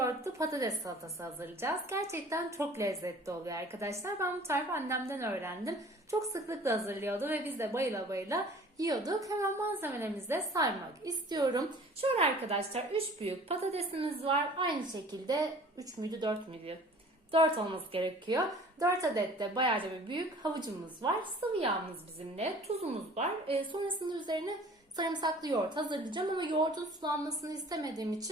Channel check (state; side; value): normal; both; correlation 0.48